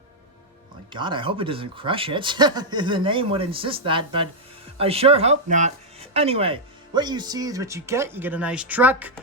oh my god, I hope it doesn't crush it. The name would insist that, but I sure hope not. Anyway, what you see is what you get. You get a nice truck,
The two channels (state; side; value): normal; both; correlation -0.03